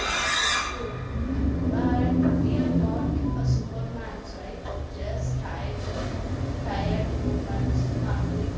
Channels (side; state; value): both; identical; correlation 1.00